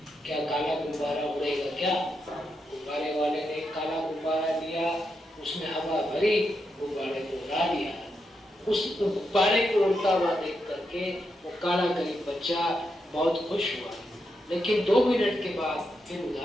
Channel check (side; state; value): both; normal; correlation 0.84